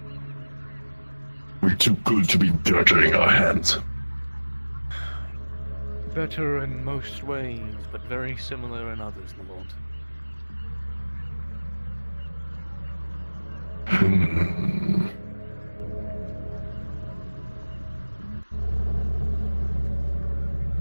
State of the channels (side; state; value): both; inverted; correlation -1.00